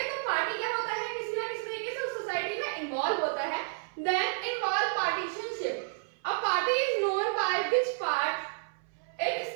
तो पार्टी क्या होता है, किसी ना किसी तरीके से उस सोसाइटी में इन्वॉल्व होता है। Then involve partisanship. A party is known by which part it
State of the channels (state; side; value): silent; left; 57 dB below the other